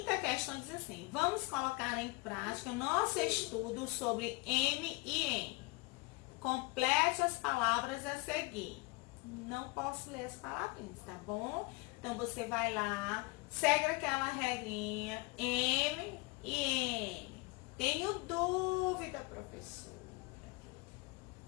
questão diz assim, vamos colocar em prática o nosso estudo sobre M e N. Complete as palavras a seguir. Não posso ler as palavrinhas, tá bom? Então, você vai lá, segue aquela regrinha, M e N. Tenho dúvida, professor.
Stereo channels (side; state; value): right; quieter; 25.8 dB